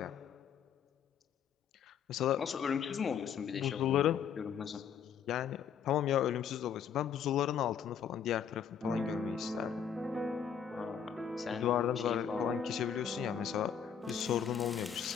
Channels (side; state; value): right; quieter; 7.9 dB